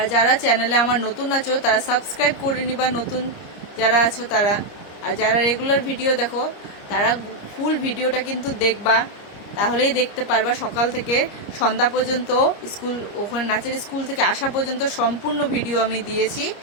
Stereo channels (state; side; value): late; right; 30 ms